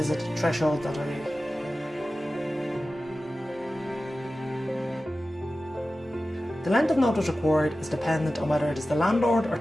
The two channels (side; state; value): both; normal; correlation 0.95